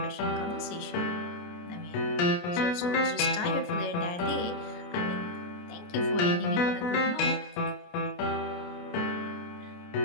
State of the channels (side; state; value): right; late; 29 ms